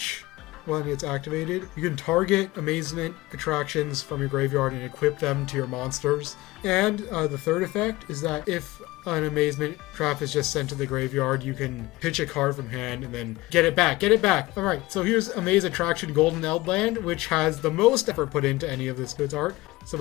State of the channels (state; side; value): quieter; right; 19.6 dB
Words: When it's activated, you can target Amazement attractions from your graveyard and equip them to your monsters. And the third effect is that if an Amazement trap is just sent to the graveyard, you can pitch a card from hand and then get it back. Get it back! Alright, so here's Amaze Attraction Golden Eldland, which has the most effort put into any of this goods art. So